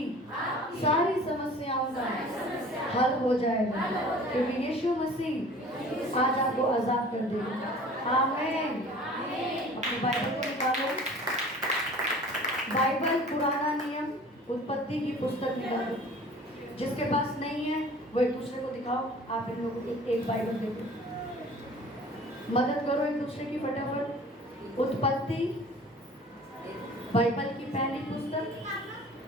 सारी समस्याओं का हल हो जाएगा, क्योंकि यीशु मसीह आज आपको आजाद कर देगा। आमीन। अपनी बाइबल को निकालो, बाइबल पुराना नियम उत्पत्ति की पुस्तक निकालो। जिसके पास नहीं है वो एक दूसरे को दिखाओ। आप इन लोगों को एक बाइबल दे दो, मदद करो एक दूसरे की फटाफट। उत्पत्ति बाइबल की पहली पुस्तक,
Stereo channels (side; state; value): both; normal; correlation 0.46